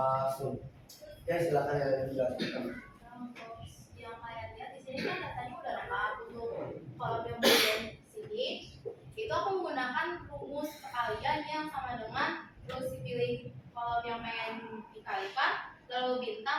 sum. Oke, silakan yang dijelaskan. Yang kalian lihat di sini kan datanya udah lengkap. Untuk kolom yang bagian sini itu aku menggunakan rumus perkalian yang sama dengan terus dipilih kolom yang pengen dikalikan, lalu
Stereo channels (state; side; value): identical; both; correlation 1.00